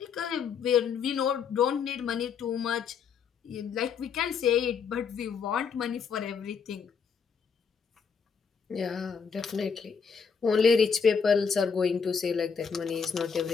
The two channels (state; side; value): quieter; right; 6.1 dB